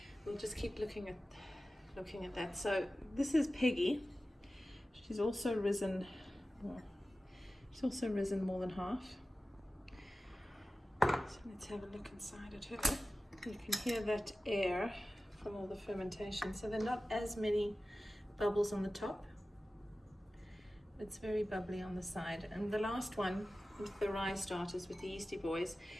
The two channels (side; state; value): both; normal; correlation 0.96